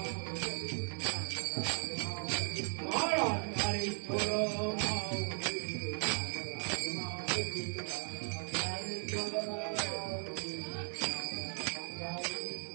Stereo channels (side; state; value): left; silent; 53 dB below the other